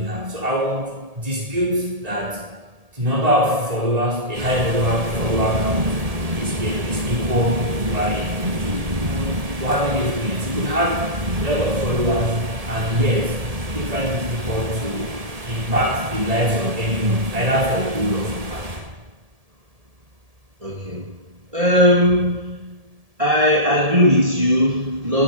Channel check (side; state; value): left; late; 1.7 ms